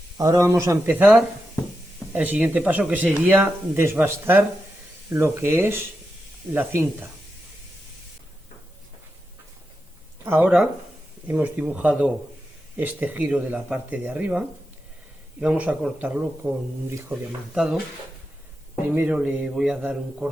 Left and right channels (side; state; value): both; normal; correlation 0.88